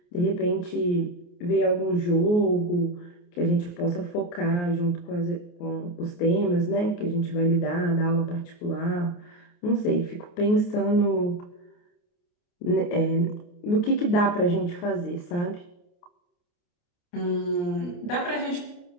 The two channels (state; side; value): late; right; 28 ms